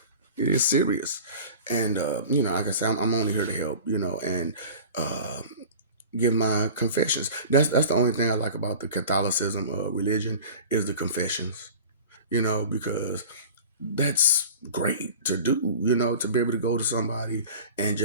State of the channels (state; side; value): inverted; both; correlation -0.39